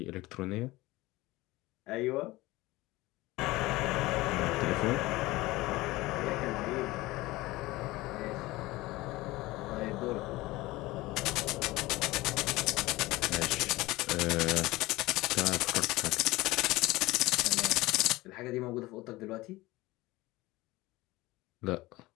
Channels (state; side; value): quieter; right; 19.7 dB